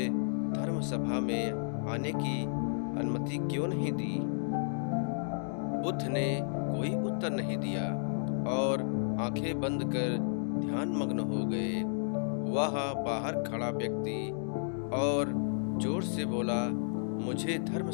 धर्म सभा में आने की अनुमति क्यों नहीं दी? बुद्ध ने कोई उत्तर नहीं दिया और आंखें बंद कर ध्यान मग्न हो गए। वह बाहर खड़ा व्यक्ति और जोर से बोला, मुझे धर्म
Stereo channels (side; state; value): right; silent; digital silence